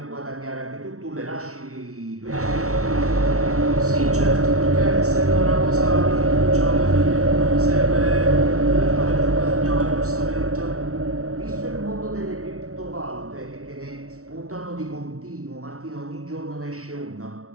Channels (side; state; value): left; late; 0.64 ms